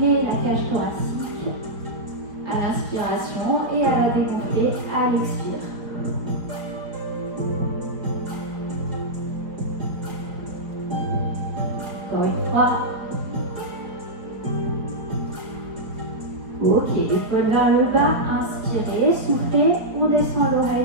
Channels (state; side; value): late; left; 4.3 ms